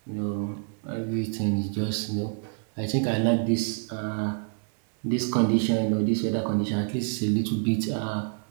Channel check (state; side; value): silent; left; 60 dB below the other